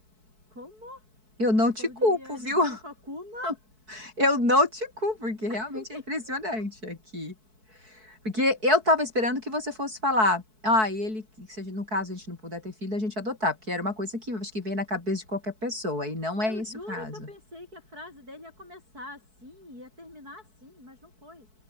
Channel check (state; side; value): late; left; 4.6 ms